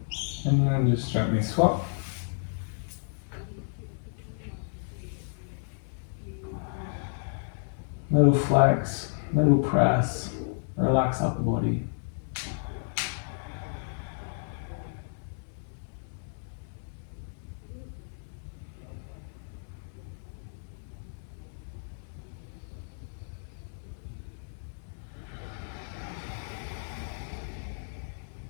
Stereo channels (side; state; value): right; silent; digital silence